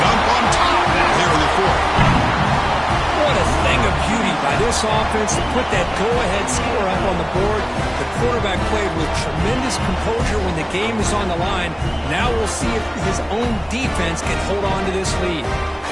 on top now here in the fourth. What a thing of beauty by this offense to put that go-ahead score up on the board. The quarterback played with tremendous composure when the game is on the line. Now we'll see if his own defense can hold on to this lead.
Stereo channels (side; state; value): both; identical; correlation 1.00